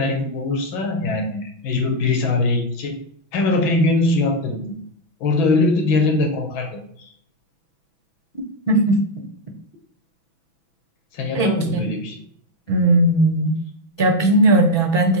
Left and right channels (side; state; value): right; late; 6.1 ms